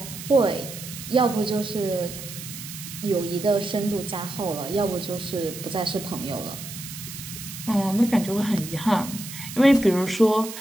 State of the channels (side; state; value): right; noise; hiss, 11 dB below the sound